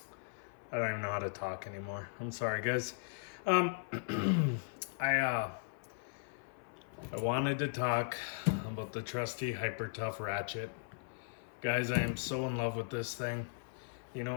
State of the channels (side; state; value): right; silent; 53 dB below the other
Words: don't even know how to talk anymore. I'm sorry, guys. I wanted to talk about the trusty Hyper Tough ratchet. Guys, I am so in love with this thing. You